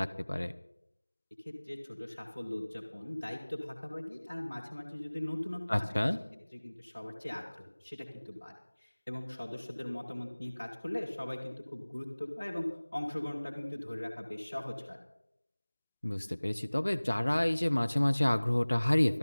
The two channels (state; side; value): inverted; both; correlation -1.00